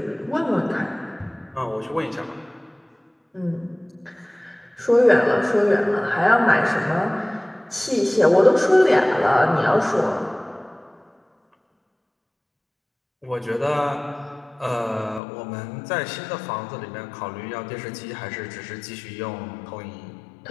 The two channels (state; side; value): drops out; right; at 15.2 s